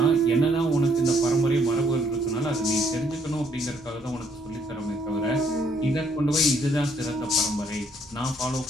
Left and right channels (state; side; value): normal; both; correlation 0.68